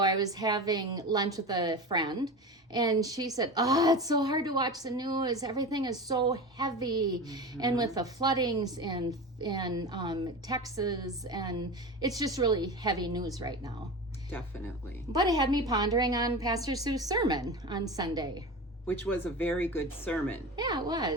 I was having lunch with a friend, and she said, "Oh, it's so hard to watch the news. Everything is so heavy, and with the floodings in Texas, and it's just really heavy news right now." Definitely. But it had me pondering on Pastor Sue's sermon on Sunday. Which was a very good sermon. Yeah, it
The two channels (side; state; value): both; normal; correlation 0.28